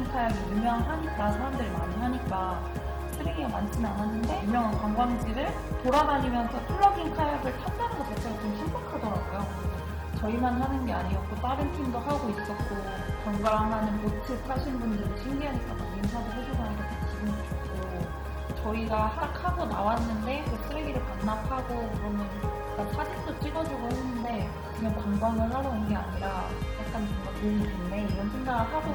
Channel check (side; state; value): both; identical; correlation 1.00